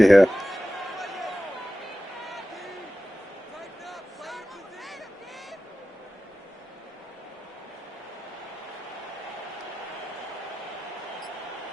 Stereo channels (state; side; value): normal; both; correlation 0.95